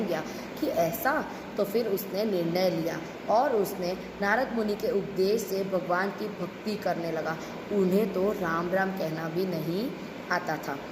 गया कि ऐसा। तो फिर उसने निर्णय लिया और उसने नारद मुनि के उपदेश से भगवान की भक्ति करने लगा। उन्हें तो राम राम कहना भी नहीं आता था।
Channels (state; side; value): identical; both; correlation 1.00